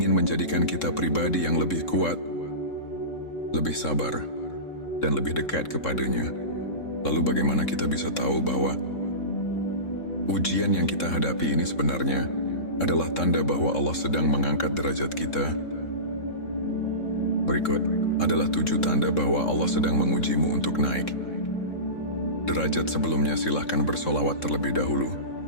menjadikan kita pribadi yang lebih kuat, lebih sabar, dan lebih dekat kepadanya. Lalu bagaimana kita bisa tahu bahwa ujian yang kita hadapi ini sebenarnya adalah tanda bahwa Allah sedang mengangkat derajat kita? Berikut adalah 7 tanda bahwa Allah sedang mengujimu untuk naik derajat. Sebelumnya silahkan bersolawat terlebih dahulu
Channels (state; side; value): late; right; 3.7 ms